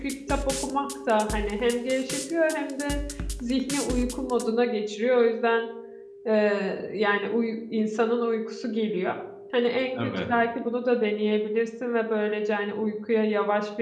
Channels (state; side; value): identical; both; correlation 1.00